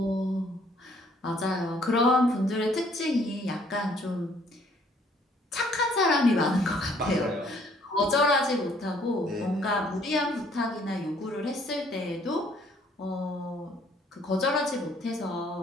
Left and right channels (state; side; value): normal; both; correlation 0.62